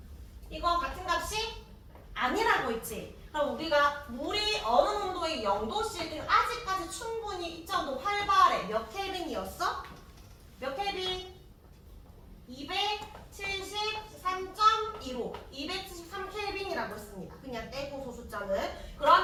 이거 같은 값이 아니라고 했지. 그럼 우리가 물이 어느 온도의 0도씨일 때는 아직까지 충분히 입자운동 활발해. 몇 켈빈이었어? 몇 켈빈? 273.15 273켈빈이라고 했습니다. 그냥 떼고 소수점은.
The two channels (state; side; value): identical; both; correlation 1.00